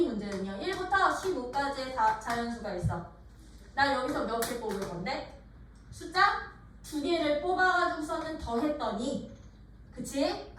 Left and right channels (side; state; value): both; identical; correlation 1.00